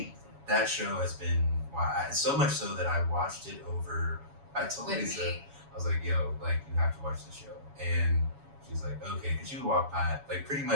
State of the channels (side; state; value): left; late; 7.2 ms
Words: that show has been, so much so that I watched it over, I told Lisa, I was like, yo, like, you have to watch the show. And she's like, okay, because you walk by, like, pretty